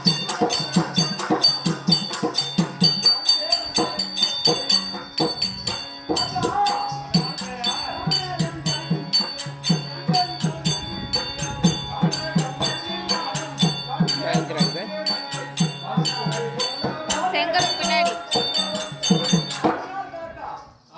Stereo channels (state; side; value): identical; both; correlation 1.00